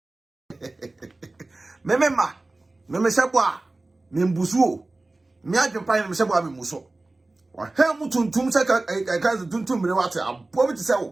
mememma. Me shebwa. Me mbusuo. Me adwempan me shebwa me muso. Wa hem tuntum se ka tuntum mere wate abo bi se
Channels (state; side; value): quieter; left; 3.0 dB